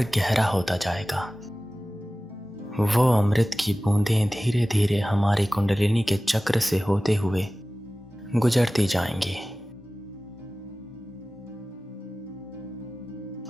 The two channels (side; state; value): both; normal; correlation 0.97